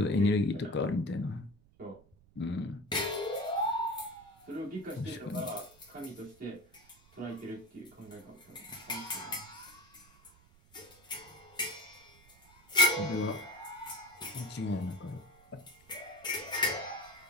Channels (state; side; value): noise; right; rumble, 27 dB below the sound